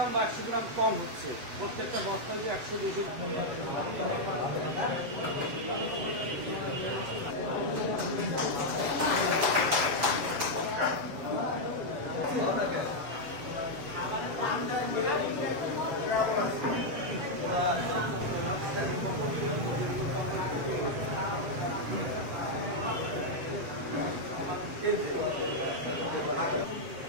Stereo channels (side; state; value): left; late; 7.7 ms